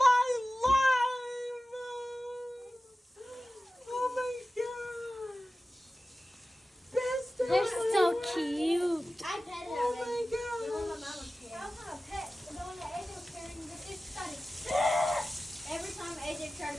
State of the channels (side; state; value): both; normal; correlation 0.95